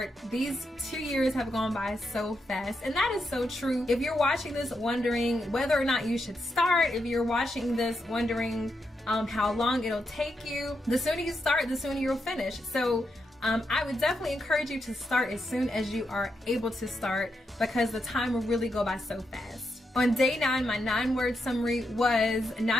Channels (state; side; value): normal; both; correlation 0.84